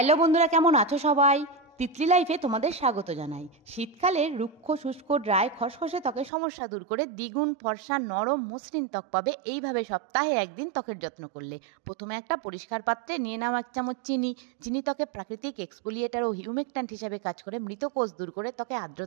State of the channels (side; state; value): left; drops out; at 6.3 s